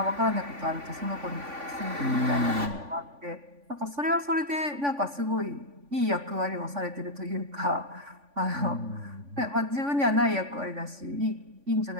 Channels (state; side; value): late; left; 3.5 ms